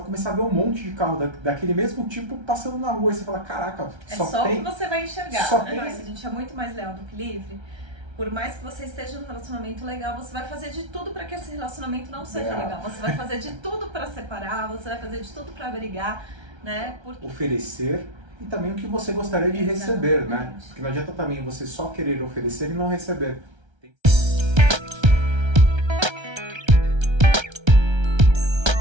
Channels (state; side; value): late; left; 1.3 ms